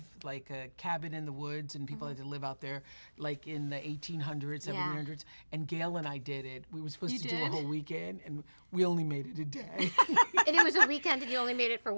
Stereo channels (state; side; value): inverted; both; correlation -1.00